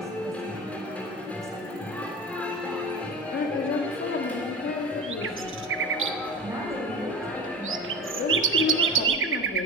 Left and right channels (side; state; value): both; normal; correlation 0.32